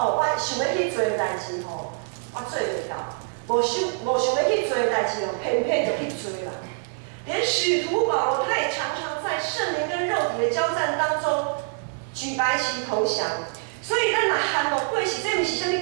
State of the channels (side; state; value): left; silent; digital silence